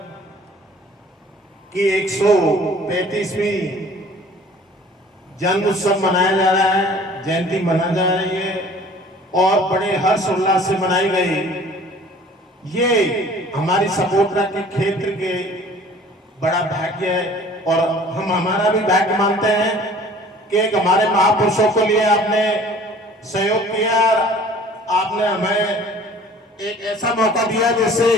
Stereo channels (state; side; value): normal; both; correlation 0.50